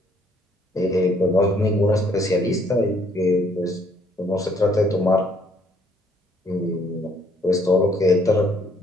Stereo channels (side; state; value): both; normal; correlation 0.65